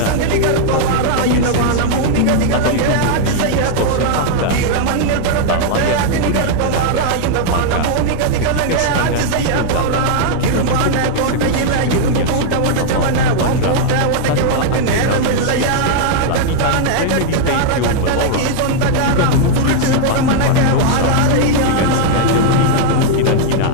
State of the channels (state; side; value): different; both; correlation -0.01